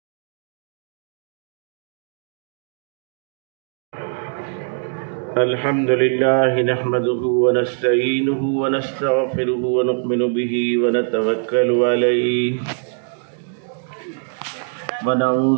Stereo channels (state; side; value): silent; left; digital silence